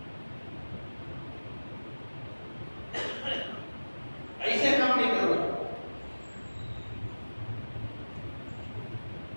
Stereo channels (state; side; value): inverted; both; correlation -1.00